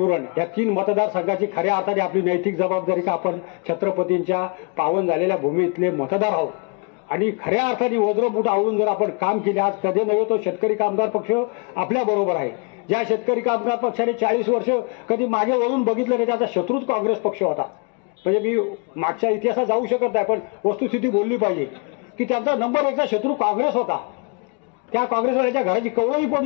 उरण या 3 मतदारसंघाची खऱ्या अर्थाने आपली नैतिक जबाबदारी का आपण छत्रपतींच्या पावन झालेल्या भूमीतले मतदार आहोत आणि खऱ्या अर्थाने वज्रमुठ आवळून जर आपण काम केले, आज कधी नव्हे तो शेतकरी कामगार पक्ष आपल्या बरोबर आहे. ज्या शेतकरी कामगार पक्षाने 40 वर्ष कधी मागे वळून बघितलं नाही, त्याचा शत्रूच काँग्रेस पक्ष होता. म्हणजे मी मागच्या इतिहासात जाऊ शकत नाही, पण वस्तुस्थिती बोलली पाहिजे की त्यांचा नंबर 1चा शत्रू काँग्रेस होता. त्या काँग्रेसवाल्याच्या घराची कवळी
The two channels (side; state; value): right; quieter; 34.1 dB